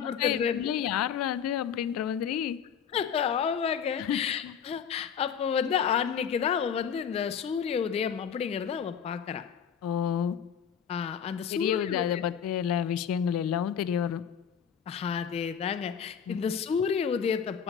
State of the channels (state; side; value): quieter; right; 7.7 dB